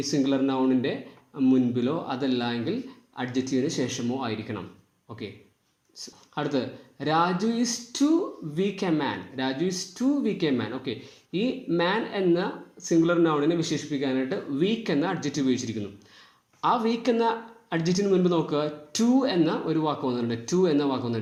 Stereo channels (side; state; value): both; identical; correlation 1.00